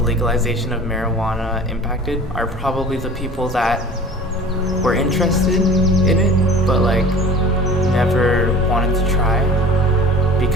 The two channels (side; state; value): both; normal; correlation 0.43